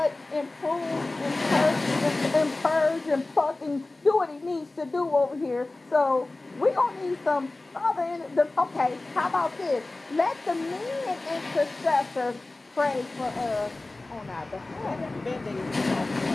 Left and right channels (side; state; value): right; quieter; 3.0 dB